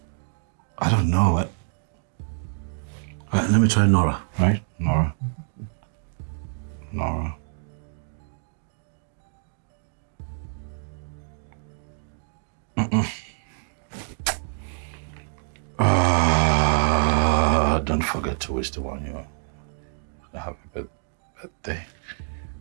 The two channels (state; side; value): silent; left; digital silence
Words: I don't know. Let me try Nora, right? Nora. Nora. Don't forget to wish the one you a happy birthday.